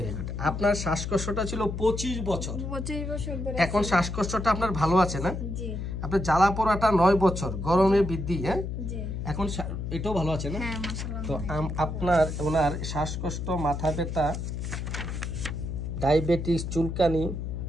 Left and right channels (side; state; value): left; noise; hum, 5 dB below the sound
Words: good. আপনার শ্বাসকষ্টটা ছিল 25 বছর। 25 বছর ধরে। এখন শ্বাসকষ্টটা আপনার ভালো আছে না? জি। আপনার জ্বালা পোড়াটা 9 বছর, গরমে বৃদ্ধি, হ্যাঁ? জি। এখন এটাও ভালো আছে না? হ্যাঁ মাশাআল্লাহ। তো ওনার শ্বাসকষ্ট, মাথা ব্যথা, ডায়াবেটিস, চুলকানি,